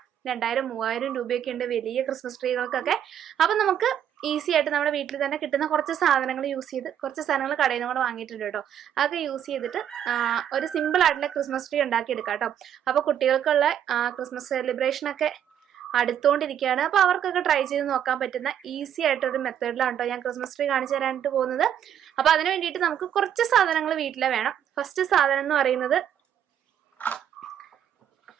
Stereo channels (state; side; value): quieter; left; 9.8 dB